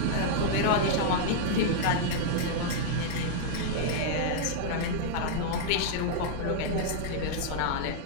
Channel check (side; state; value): both; different; correlation -0.01